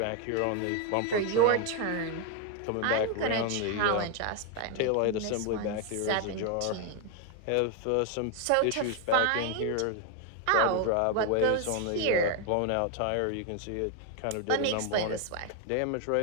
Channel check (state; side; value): different; both; correlation 0.01